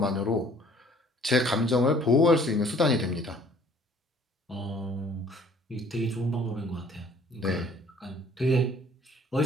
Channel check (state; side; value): normal; both; correlation 0.56